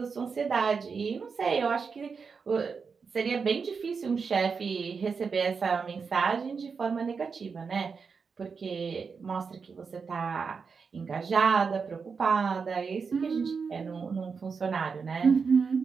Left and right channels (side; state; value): left; quieter; 5.4 dB